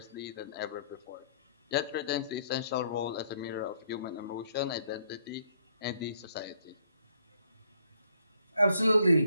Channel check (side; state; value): both; inverted; correlation -0.67